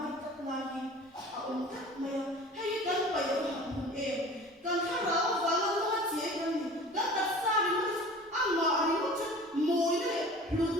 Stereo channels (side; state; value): both; normal; correlation 0.42